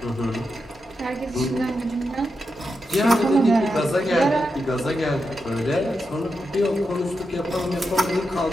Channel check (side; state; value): both; normal; correlation 0.87